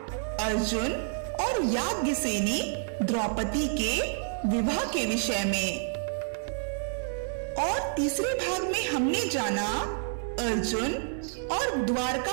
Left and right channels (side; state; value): left; silent; 59 dB below the other